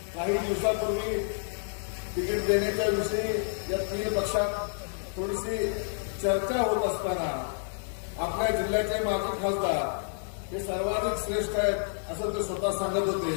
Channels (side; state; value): right; silent; 57 dB below the other